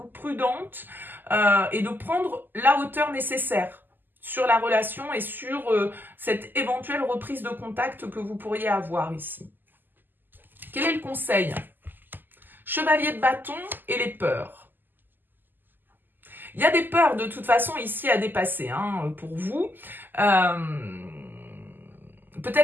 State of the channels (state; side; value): late; left; 0.090 ms